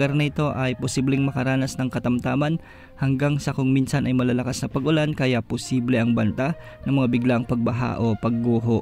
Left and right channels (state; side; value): identical; both; correlation 1.00